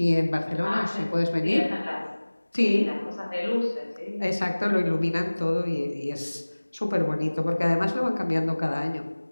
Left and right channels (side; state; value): both; inverted; correlation -1.00